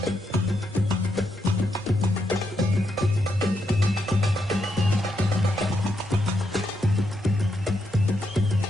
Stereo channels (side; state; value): both; normal; correlation 0.80